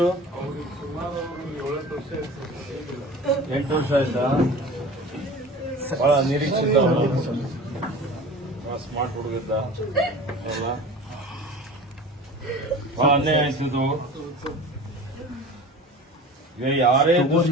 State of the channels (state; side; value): normal; both; correlation 0.38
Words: 8 ವರ್ಷ ಆಯ್ತಾ? ಬಹಳ ನಿರೀಕ್ಷಿತ, ಸ್ಮಾರ್ಟ್ ಹುಡುಗಿದ್ದ ಎಲ್ಲ. ಬಹಳ ಅನ್ಯಾಯ ಆಯ್ತಿದ್ದು. ಈಗ ಯಾರೇ